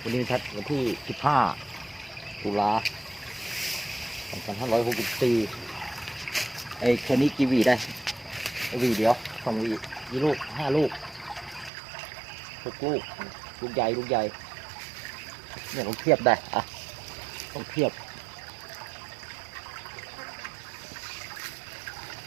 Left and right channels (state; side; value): drops out; left; at 11.7 s